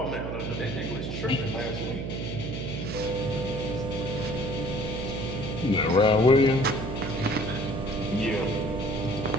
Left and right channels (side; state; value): right; noise; hum, 4 dB below the sound